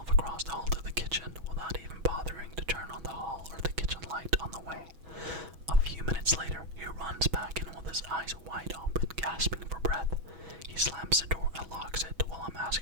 across the hall to the kitchen without even bothering to turn on the hall or the kitchen light on the way. A few minutes later, he runs back in with his eyes wide open, gasping for breath. He slams the door and locks it while I'm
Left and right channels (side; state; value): left; late; 6.2 ms